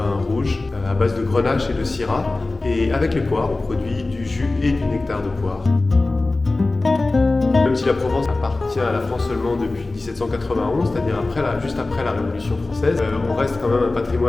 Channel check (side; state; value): right; quieter; 3.2 dB